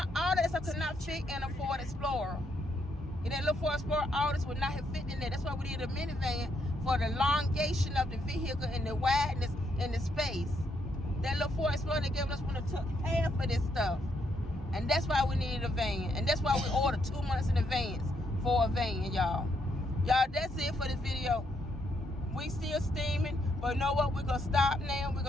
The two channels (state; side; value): normal; both; correlation 0.76